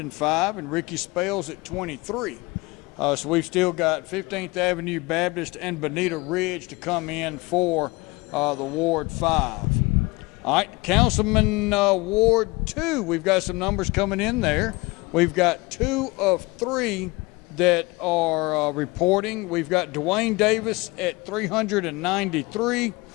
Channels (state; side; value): quieter; right; 24.1 dB